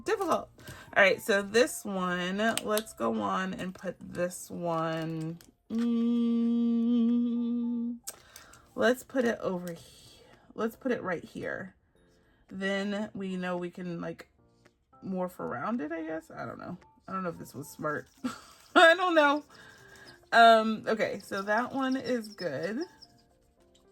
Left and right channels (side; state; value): both; identical; correlation 1.00